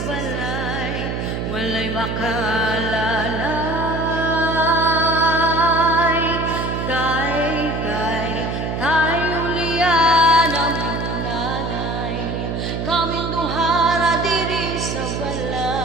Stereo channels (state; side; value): noise; right; hum, 3 dB below the sound